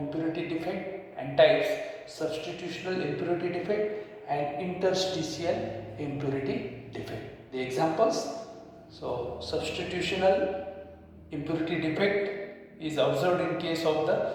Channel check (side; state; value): both; identical; correlation 1.00